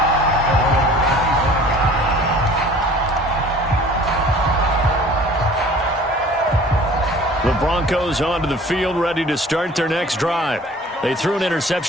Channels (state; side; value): normal; both; correlation 0.48